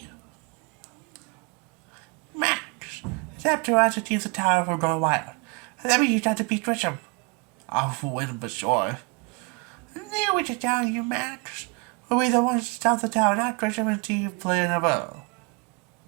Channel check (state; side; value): quieter; left; 30.0 dB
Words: Max, it's up to us to keep the tower from going wild. And then we use that to beat Grisham. I'll win for sure. I knew what you're telling you, Max. We'll be the ones to stop the tower, not Grisham and Team playing a bow.